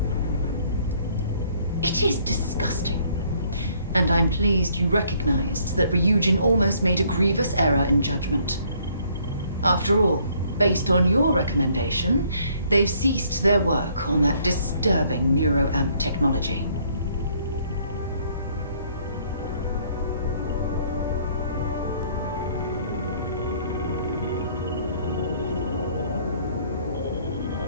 It is disgusting. And I'm pleased you recognized that Ryujin almost made a grievous error in judgment. After all, based on your recommendation, they've ceased their work on that disturbing neuroamp technology.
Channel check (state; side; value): inverted; both; correlation -0.64